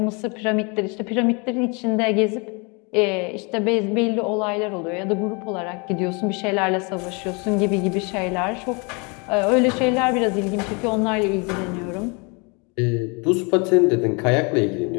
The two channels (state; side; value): quieter; right; 31.6 dB